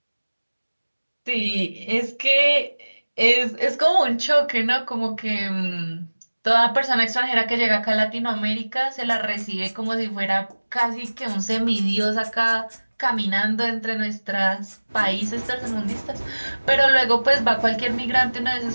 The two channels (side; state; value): both; inverted; correlation -1.00